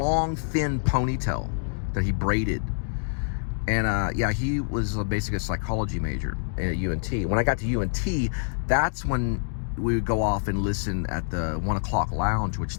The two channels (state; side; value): silent; right; digital silence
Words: thin ponytail that he braided. And yeah, he was basically a psychology major at UNT. When I got to UNT, that's when we would go off and listen at the 1 o'clock lounge, which